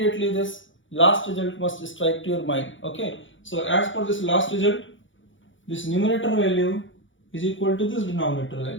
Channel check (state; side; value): late; right; 0.56 ms